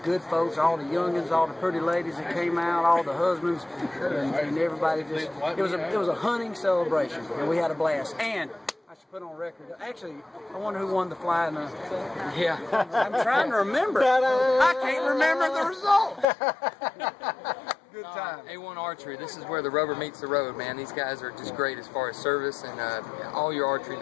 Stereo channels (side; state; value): right; drops out; at 16.2 s